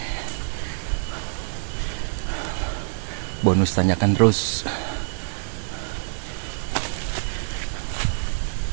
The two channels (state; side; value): silent; left; digital silence